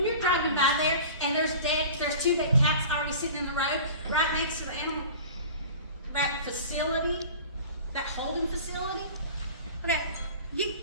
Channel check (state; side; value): inverted; both; correlation -0.39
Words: you're driving by there and there's two dead cats already sitting in the road right next to the animal, that facility, that holding facility. Okay,